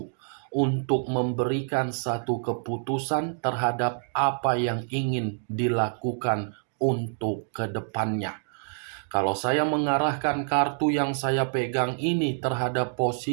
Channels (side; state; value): left; silent; digital silence